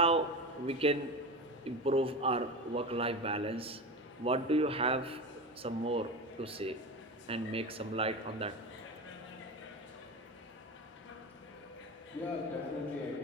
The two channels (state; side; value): normal; both; correlation 0.25